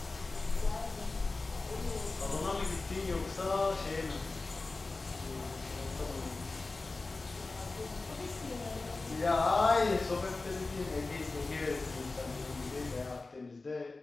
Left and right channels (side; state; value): right; quieter; 3.5 dB